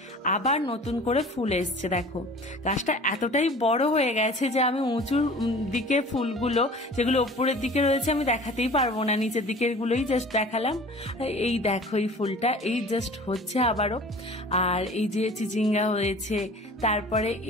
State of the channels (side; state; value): both; normal; correlation 0.44